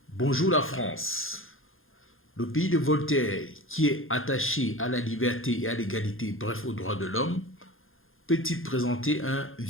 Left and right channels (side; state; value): right; late; 0.60 ms